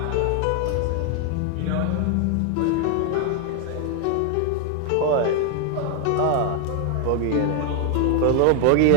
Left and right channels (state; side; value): different; both; correlation 0.00